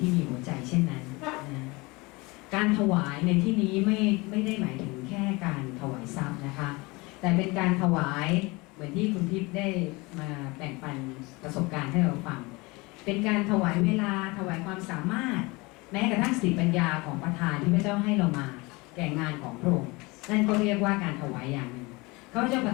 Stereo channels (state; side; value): quieter; right; 24.7 dB